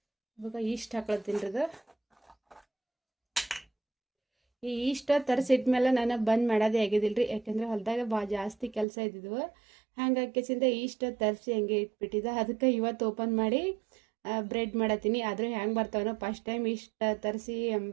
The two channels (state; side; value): drops out; left; at 8.8 s